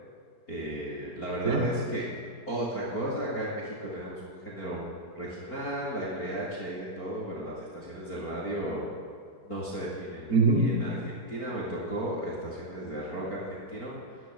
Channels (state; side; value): late; right; 4.4 ms